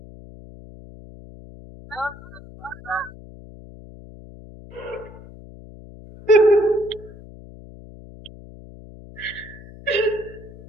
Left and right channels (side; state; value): left; noise; hum, 18 dB below the sound